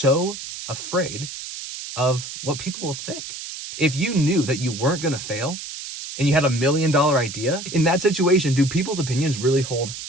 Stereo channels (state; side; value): noise; right; hiss, 9 dB below the sound